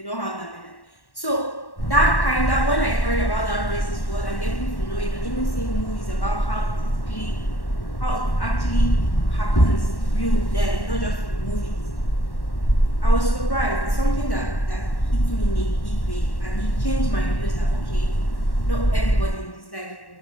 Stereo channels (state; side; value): late; right; 1.1 ms